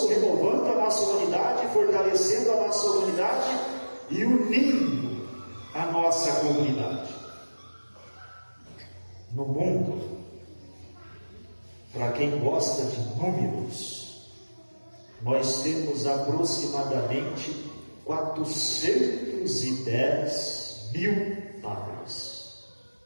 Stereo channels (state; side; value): inverted; both; correlation -1.00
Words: renovando a nossa humanidade, fortalecendo a nossa humanidade e unindo a nossa comunidade. No mundo, para quem gosta de números, nós temos aproximadamente 410 mil padres.